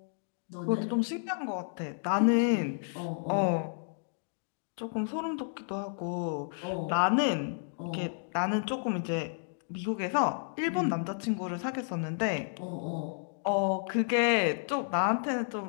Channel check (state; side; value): silent; right; digital silence